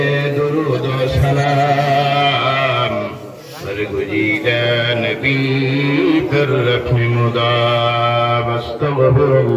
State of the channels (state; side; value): identical; both; correlation 1.00